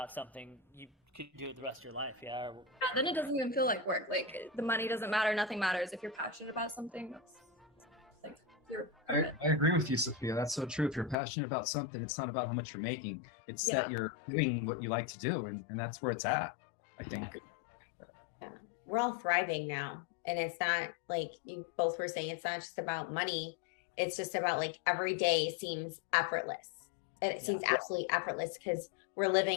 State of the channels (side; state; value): right; drops out; at 11.2 s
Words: something, you could do it the rest of your life. Yeah. Yeah, then it doesn't even feel like work. Like the money doesn't matter. Nothing matters. If you're passionate about something, that's like you're. I agree with you, Sophia. That's so true. If you're passionate about something, it's not about how much you're making. It's that you're doing what you like to do, and that's where it's at, I think. We're all thriving now, and it's not like you both were saying, it's not just about money. It's just about like every day seems effortless. It seems absolutely effortless because we're